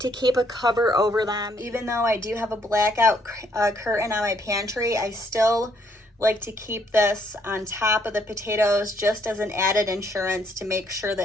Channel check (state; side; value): normal; both; correlation 0.69